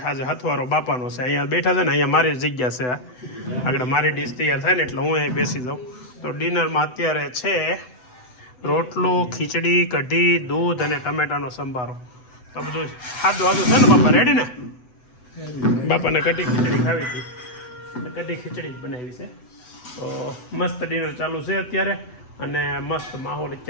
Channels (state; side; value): late; right; 8.0 ms